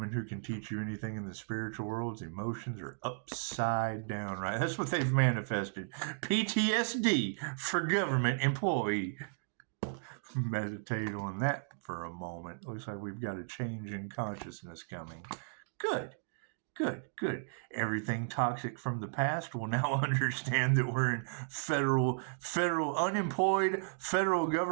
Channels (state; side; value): silent; left; digital silence